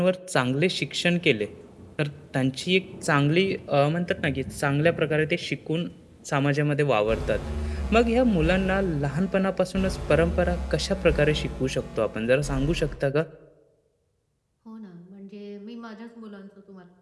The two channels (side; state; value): both; identical; correlation 1.00